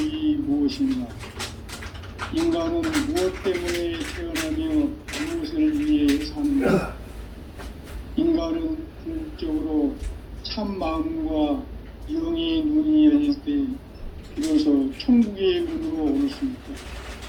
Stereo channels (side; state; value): both; identical; correlation 1.00